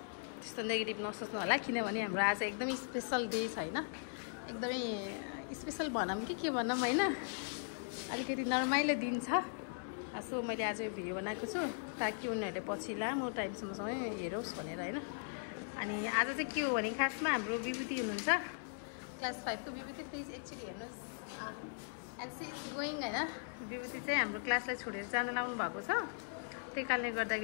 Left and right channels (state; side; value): silent; right; digital silence